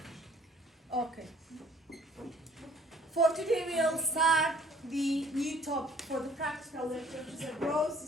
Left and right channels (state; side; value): normal; both; correlation 0.57